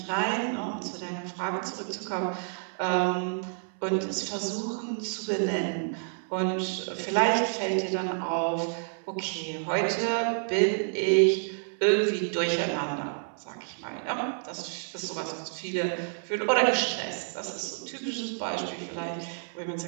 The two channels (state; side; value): silent; left; 58 dB below the other